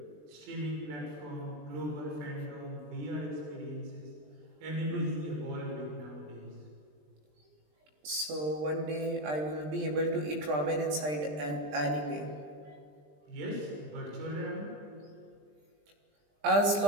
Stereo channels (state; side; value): late; left; 20 ms